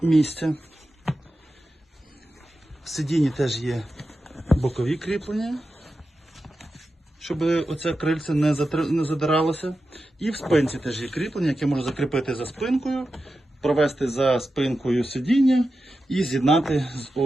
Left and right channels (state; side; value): normal; both; correlation 0.91